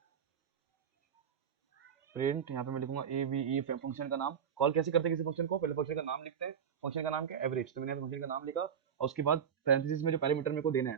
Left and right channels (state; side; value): quieter; left; 7.9 dB